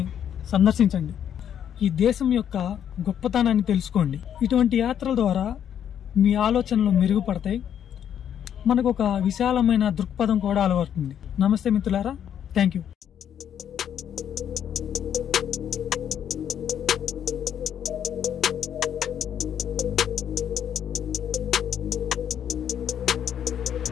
సందర్శించండి. ఈ దేశం యొక్క గొప్పతనాన్ని తెలుసుకోండి. ఇటువంటి యాత్రల ద్వారా మీ ఆలోచనలు మెరుగుపడతాయి. మనకు ఒక విశాలమైన దృక్పథం కూడా అలవడుతుంది. నమస్తే మిత్రులారా, థ్యాంక్ యూ.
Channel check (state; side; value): quieter; right; 9.3 dB